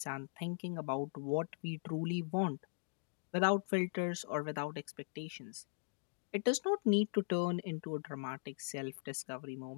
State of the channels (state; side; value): silent; right; digital silence